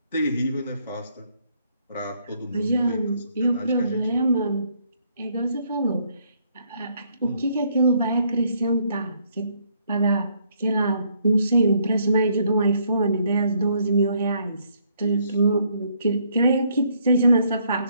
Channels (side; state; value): both; inverted; correlation -0.69